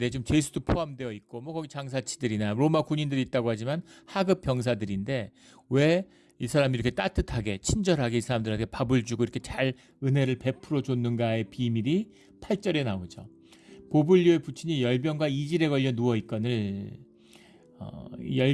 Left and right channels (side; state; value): both; identical; correlation 1.00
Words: 지금 죄수도 포함되어 있고 뭐 거기 장사치들이나 로마 군인들이 있다고 하지만 하급 병사들인데 왜 이 사람이 이렇게 따뜻하게 친절하게 이 사람들한테 밥을 주고 이렇게 잘 은혜를 베풀어 줬는가의 비밀이 8절에 나오죠. 보블리오의 부친이 열병과 이질에 걸려 누워 있거늘.